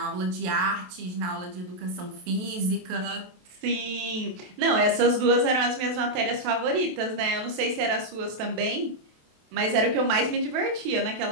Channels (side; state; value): left; late; 27 ms